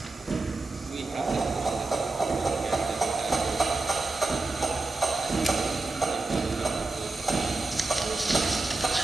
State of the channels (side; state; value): left; quieter; 3.4 dB